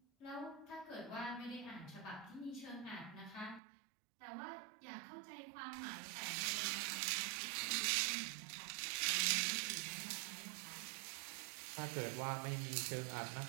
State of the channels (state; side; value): drops out; left; at 3.6 s